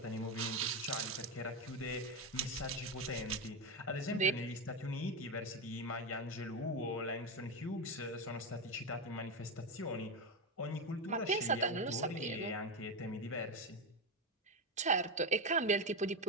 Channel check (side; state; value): both; normal; correlation 0.12